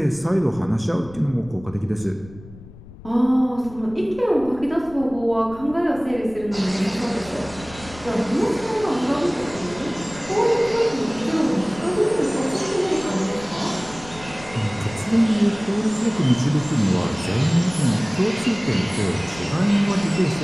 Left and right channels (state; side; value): noise; left; rumble, 19 dB below the sound